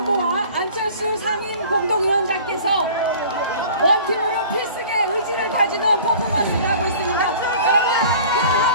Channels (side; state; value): both; inverted; correlation -0.46